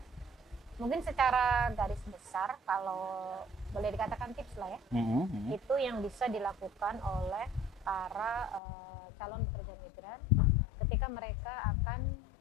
Mungkin secara garis besar kalau boleh dikatakan tips lah ya, itu yang bisa dilakukan oleh para calon pekerja migran ketika mereka akan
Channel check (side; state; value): right; drops out; at 8.6 s